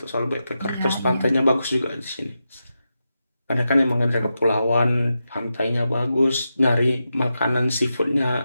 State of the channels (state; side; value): inverted; both; correlation -0.89